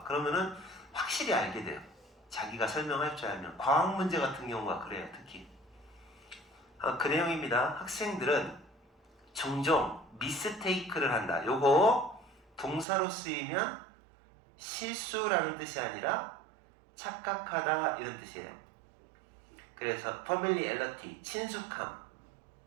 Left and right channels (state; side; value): drops out; left; at 12.9 s